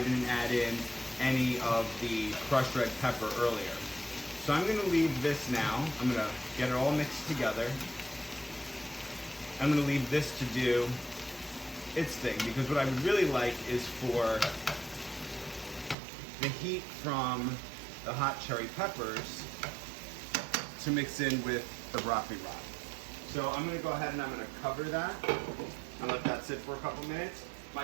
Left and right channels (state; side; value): drops out; left; at 16.0 s